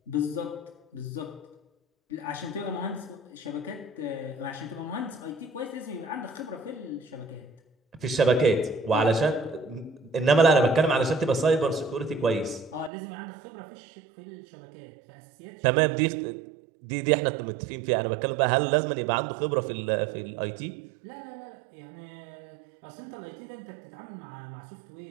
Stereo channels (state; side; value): drops out; left; at 12.9 s